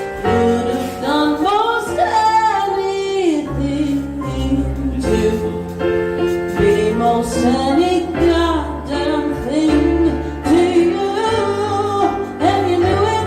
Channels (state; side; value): identical; both; correlation 1.00